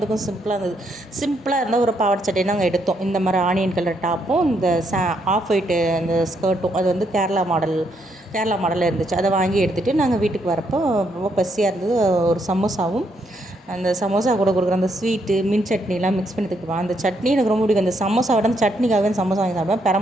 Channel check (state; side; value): normal; both; correlation 0.75